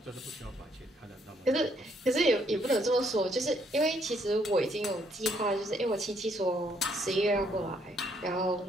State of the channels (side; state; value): both; normal; correlation 0.70